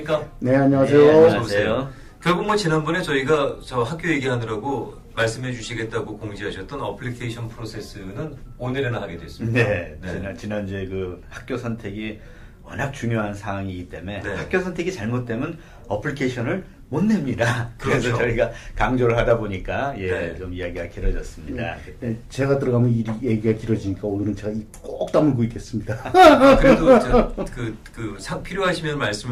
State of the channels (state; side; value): identical; both; correlation 1.00